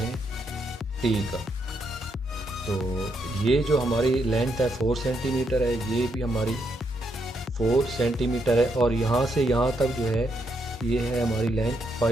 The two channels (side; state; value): both; normal; correlation 0.78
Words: T का। तो ये जो हमारी लेंथ है 4 सेंटीमीटर है, ये भी हमारी 4 सेंटीमीटर है, और यहाँ से यहाँ तक जो है ये है हमारी लेंथ